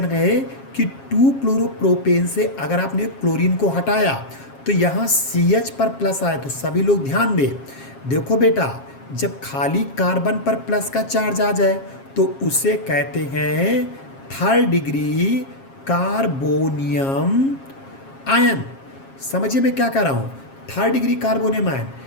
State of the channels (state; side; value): late; right; 7.4 ms